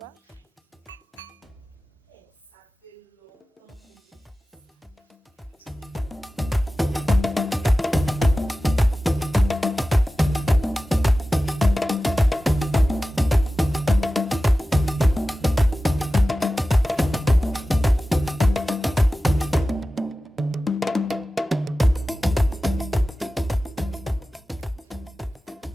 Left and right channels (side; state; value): both; normal; correlation 0.95